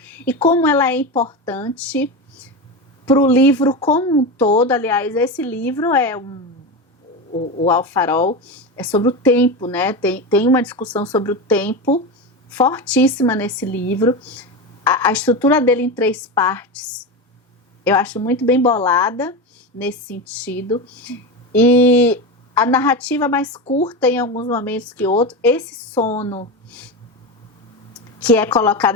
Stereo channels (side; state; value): both; normal; correlation 0.20